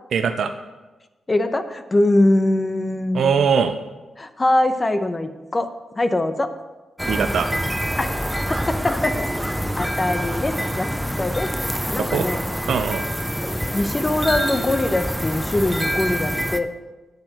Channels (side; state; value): both; normal; correlation 0.92